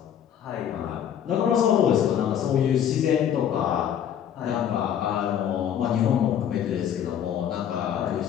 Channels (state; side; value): quieter; right; 9.4 dB